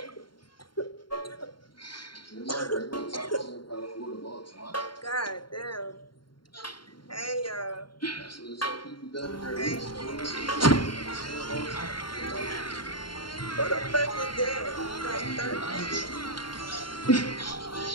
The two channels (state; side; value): late; right; 0.72 ms